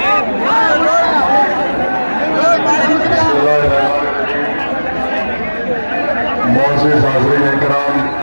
मोअज़्ज़िज़ हाज़रीन इकराम,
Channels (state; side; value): inverted; both; correlation -1.00